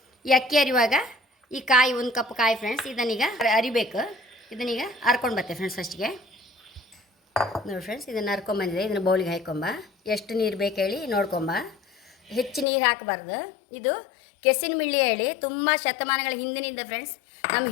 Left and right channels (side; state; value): right; drops out; at 12.7 s